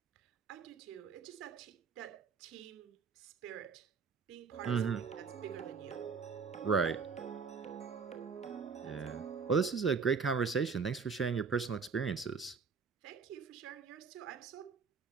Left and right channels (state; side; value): quieter; left; 5.4 dB